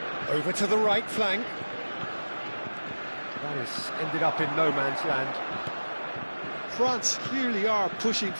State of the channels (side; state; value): both; inverted; correlation -1.00